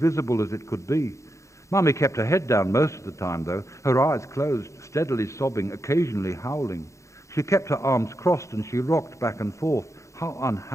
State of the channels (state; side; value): late; right; 0.15 ms